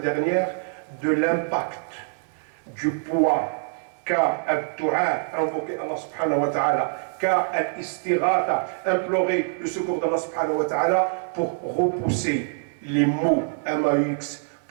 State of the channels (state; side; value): silent; left; 62 dB below the other